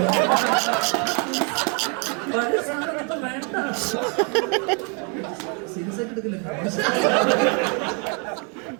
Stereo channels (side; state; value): left; quieter; 36.3 dB